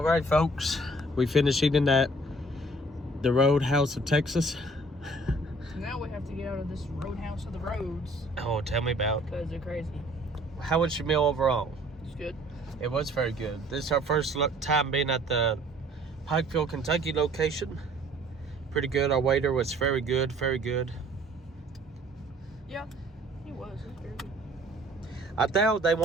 right, folks. We finished eating the Roadhouse of Texas. Now we have to get out of this Roadhouse of the roads. Oh, tell me about. Because they're crazy. How was your meal overall? It's good. It was very good. This is our first time being at the Pikeville, Kentucky location. Pretty good. Our waiter was very good, very good. Yeah, he was. He was very good. I doubt they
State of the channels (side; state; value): both; normal; correlation 0.55